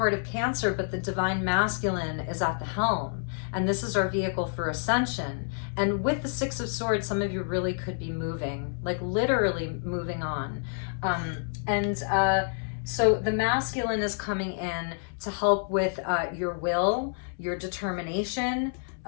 of Cancer, but the divine masculine is at the helm. And this is our vehicle for ascension. And with the Six of Swords, some of you really could be moving, like literally moving on. So the masculine is coming in to help with your will, your determination,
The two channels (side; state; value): right; silent; 59 dB below the other